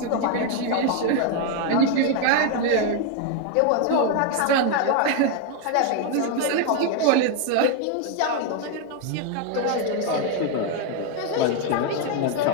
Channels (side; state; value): both; different; correlation 0.01